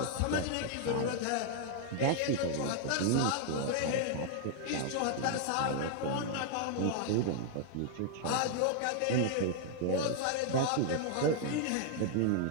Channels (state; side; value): different; both; correlation 0.00